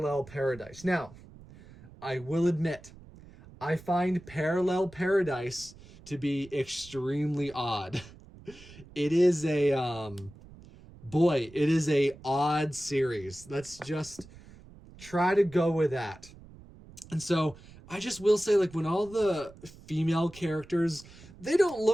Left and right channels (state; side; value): noise; right; rumble, 20 dB below the sound